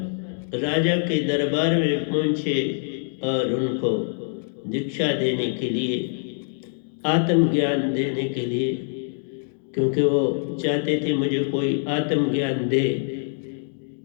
राजा के दरबार में पहुंचे और उनको दीक्षा देने के लिए, आत्मज्ञान देने के लिए, क्योंकि वो चाहते थे मुझे कोई आत्मज्ञान दे।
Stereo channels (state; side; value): silent; right; 57 dB below the other